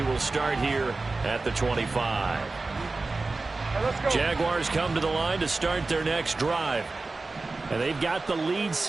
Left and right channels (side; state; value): left; quieter; 3.6 dB